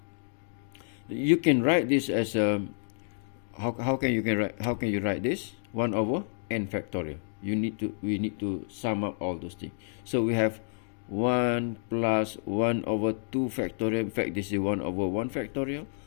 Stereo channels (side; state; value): right; silent; digital silence